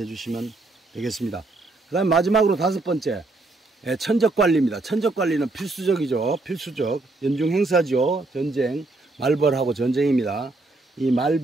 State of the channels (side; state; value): left; quieter; 3.1 dB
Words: 주시면 되겠습니다. 그 다음에 마지막으로 5번째, 예, 천적관리입니다. 천적관리는 필수적이죠. 필수적. 연중 행사죠. 전쟁, 말벌하고 전쟁입니다. 이